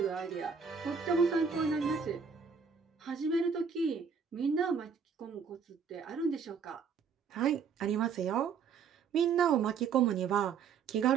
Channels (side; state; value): left; quieter; 6.3 dB